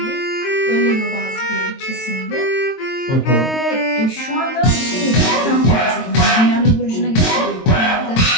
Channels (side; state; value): right; late; 22 ms